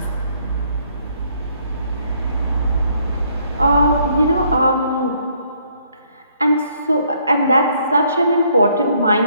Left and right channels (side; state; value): both; inverted; correlation -0.67